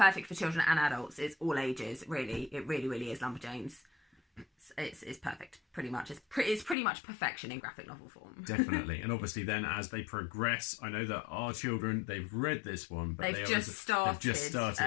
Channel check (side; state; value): right; drops out; at 6.8 s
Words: for children and adults. It's all ages, really. It really is Lumberjanes. It's perfect, pretty much. It's pretty much perfection in graphic novel form. Definitely. And obviously then as they progress, I know that our children, they've read this one, but they've just started